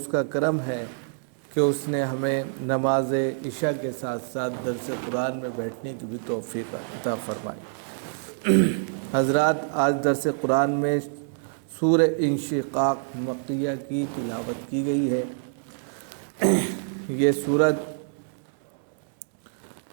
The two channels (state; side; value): silent; left; digital silence